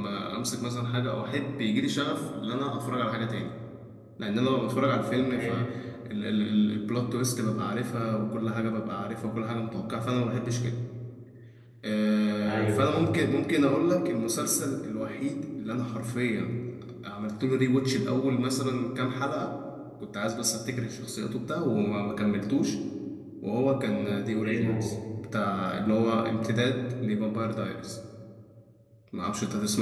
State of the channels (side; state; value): both; identical; correlation 1.00